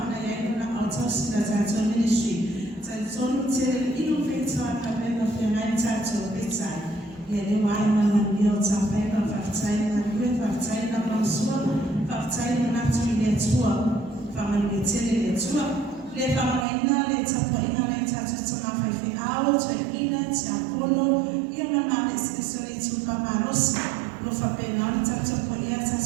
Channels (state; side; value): drops out; left; at 16.7 s